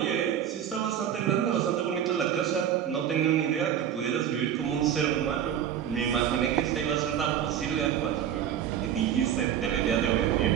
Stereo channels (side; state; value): left; quieter; 9.6 dB